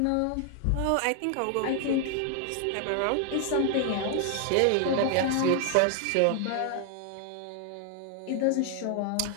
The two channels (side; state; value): both; different; correlation 0.00